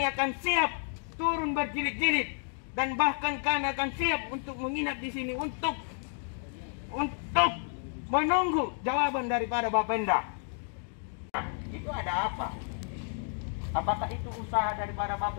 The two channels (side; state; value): right; silent; 57 dB below the other